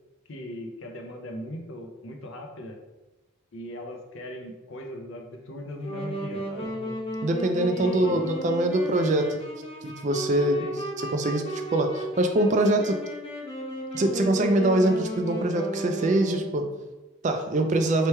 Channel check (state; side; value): normal; both; correlation 0.51